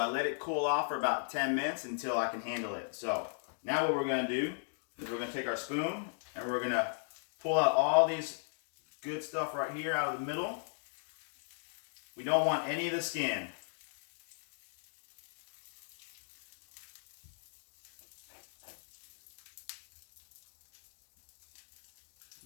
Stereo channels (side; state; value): right; silent; digital silence